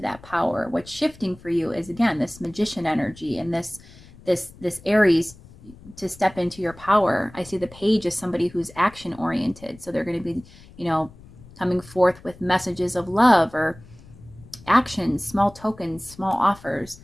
that power. What's shifting for you is, again, this magician energy and this Aries, to step into your power. I see the page as somebody who's action oriented. So they're going to be, coming forth with messages of love or actions, small tokens, small offers.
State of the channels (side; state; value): left; noise; rumble, 22 dB below the sound